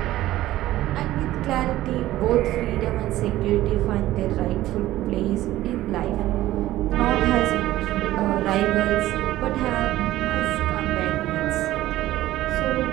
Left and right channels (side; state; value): left; quieter; 15.2 dB